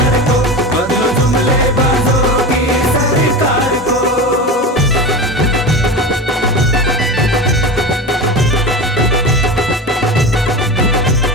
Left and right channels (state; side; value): normal; both; correlation 0.27